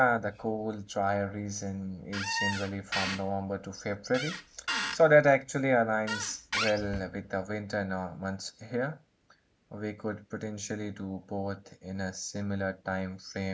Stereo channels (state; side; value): identical; both; correlation 1.00